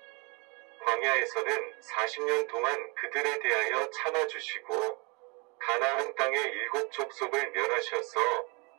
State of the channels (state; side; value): quieter; left; 30.2 dB